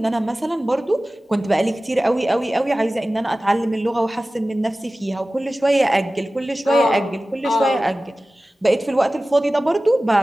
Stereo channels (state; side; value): normal; both; correlation 0.96